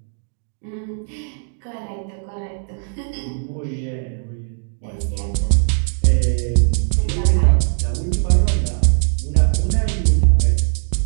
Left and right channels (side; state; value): left; silent; digital silence